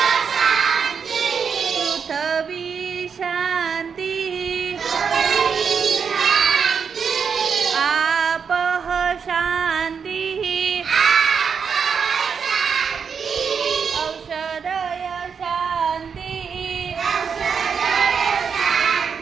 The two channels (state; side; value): quieter; left; 6.4 dB